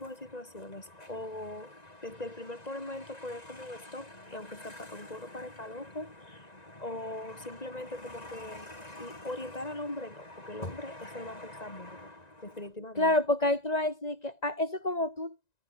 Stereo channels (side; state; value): right; late; 1.9 ms